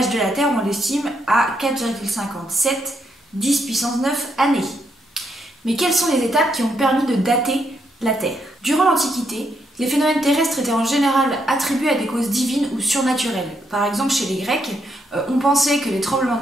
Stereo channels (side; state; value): both; normal; correlation 0.77